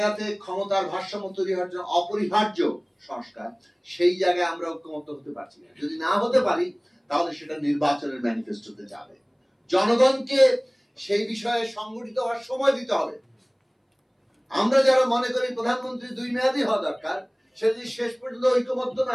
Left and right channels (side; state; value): both; identical; correlation 1.00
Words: ক্ষমতার ভারসাম্য তৈরি হওয়ার জন্য অপরিহার্য সংস্কার, সেই জায়গায় আমরা ঐক্যমত হতে পারছি না। যদি না হতে পারি তাহলে সেটা নির্বাচনের ম্যানিফেস্টোতে যাবে। জনগণকে সেই বিষয়ে সংগঠিত হওয়ার সময় দিতে হবে। আমরা যারা মনে করি প্রধানমন্ত্রী 2 মেয়াদই হওয়া দরকার, সে যদি শেষ পর্যন্ত ঐক্যমত্য